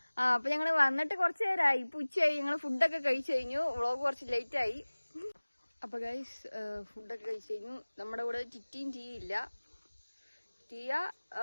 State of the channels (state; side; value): inverted; both; correlation -1.00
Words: അപ്പൊ ഞങ്ങള് വന്നിട്ട് കുറച്ചു നേരമായി. ഇപ്പൊ ഉച്ചയായി. ഞങ്ങള് ഫുഡൊക്കെ കഴിച്ചു കഴിഞ്ഞു. വ്ളോഗ് കുറച്ച് ലേറ്റ് ആയി. അപ്പൊ ഗൈസ് ഫുഡൊക്കെ കഴിച്ചു കഴിഞ്ഞു. നമ്മുടെ കൂടെ ടിറ്റിയും ടീ ഇല്ല. ടീയ